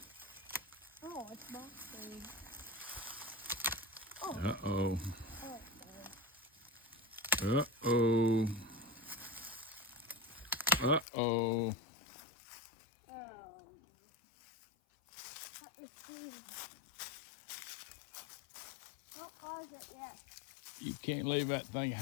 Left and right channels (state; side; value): drops out; right; at 11.1 s